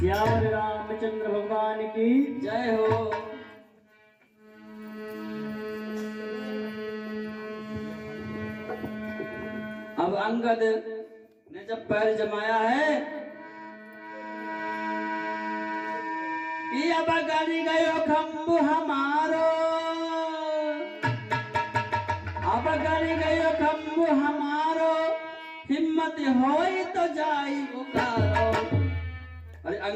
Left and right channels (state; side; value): identical; both; correlation 1.00